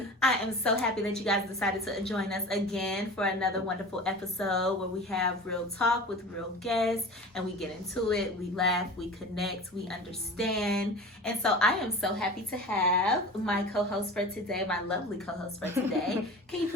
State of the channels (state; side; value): normal; both; correlation 0.36